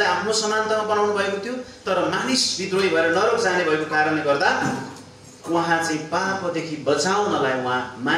आफ्नो समानतामा बनाउनु भएको थियो, तर मानिस विद्रोही भएर नरक जाने भएको कारणले गर्दा उहाँ चाहिँ पापदेखि बचाउनलाई उहाँ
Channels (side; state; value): both; identical; correlation 1.00